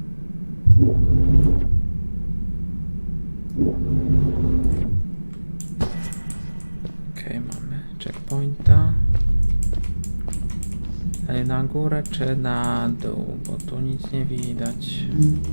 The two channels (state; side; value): inverted; both; correlation -1.00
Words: Okej, mamy checkpointa. Dalej na górę czy na dół, bo tu nic nie widać.